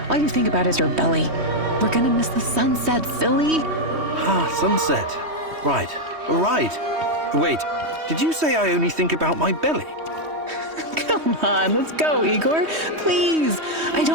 All you think about is your belly. We're gonna miss the sunset, silly. Ah, sunset. Right. Right. Wait, did you say I only think about my belly? Come on, let's go, Igor. Please. I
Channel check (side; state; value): left; late; 3.2 ms